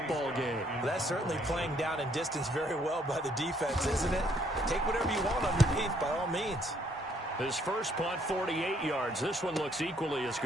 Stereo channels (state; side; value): normal; both; correlation 0.67